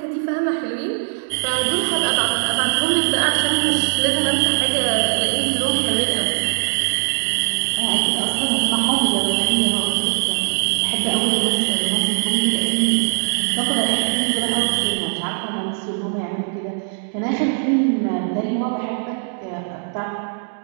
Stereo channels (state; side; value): silent; left; digital silence